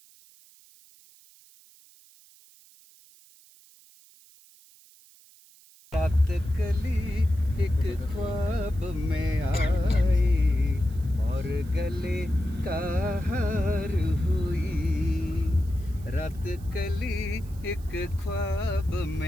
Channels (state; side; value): noise; right; hiss, 26 dB below the sound